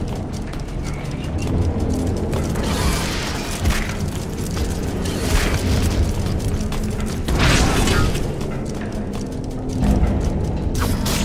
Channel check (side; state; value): both; identical; correlation 1.00